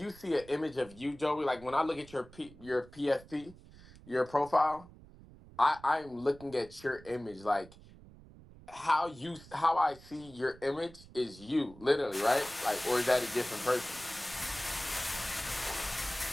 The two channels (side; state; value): right; noise; rumble, 21 dB below the sound